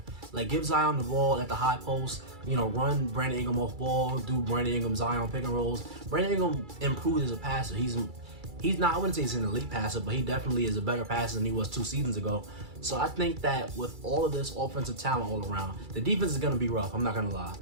Like, give Zion the ball at the high post. You know, run Brandon Ingram off ball. Do Brandon Ingram, Zion pick and rolls. Brandon Ingram improved as a passer. He's not, I wouldn't say he's an elite passer, but he definitely is a better passer than he was 2 seasons ago. So I think that with all of this offensive talent all around, the defense is going to be rough. I'm not going to lie.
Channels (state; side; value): late; left; 2.3 ms